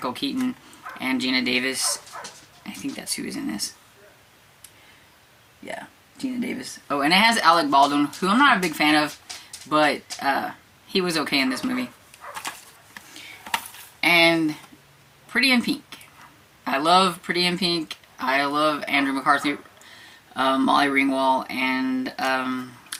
Keaton and Gina Davis. I think that's who is in this. Yeah, Gina Davis. Oh, and it has Alec Baldwin, who I'm not a big fan of, but he was okay in this movie. And Pretty in Pink. I love Pretty in Pink. I love Andrew McCarthy, Molly Ringwald, and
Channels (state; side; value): identical; both; correlation 1.00